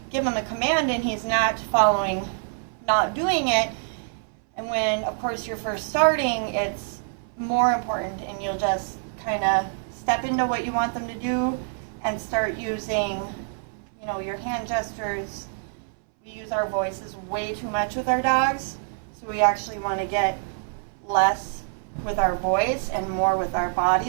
give him a command and he's not following, not doing it, and when, of course, you're first starting, it's more important, and you'll just kind of step into what you want them to do and start using, you know, your hand gestures. We use our voices way too much with our dogs, so we actually want to get less with our voice and more with our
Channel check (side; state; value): left; silent; 61 dB below the other